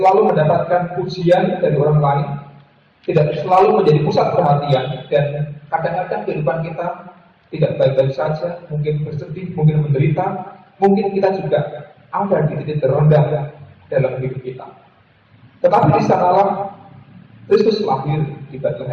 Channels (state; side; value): identical; both; correlation 1.00